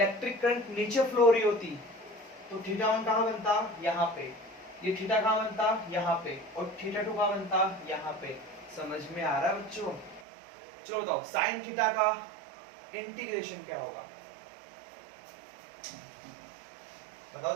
करंट नीचे फ्लो हो रही होती तो थीटा 1 कहां बनता? यहाँ पे। ये थीटा कहाँ बनता, यहाँ पे, और थीटा 2 कहाँ बनता, यहाँ पे। समझ में आ रहा है बच्चों? चलो बताओ साइन थीटा का इंटीग्रेशन क्या होगा, बताओ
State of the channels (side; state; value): left; drops out; at 10.2 s